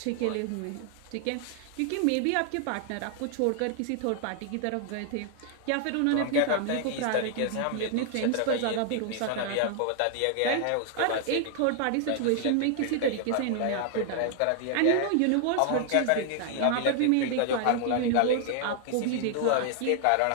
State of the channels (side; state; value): both; different; correlation 0.00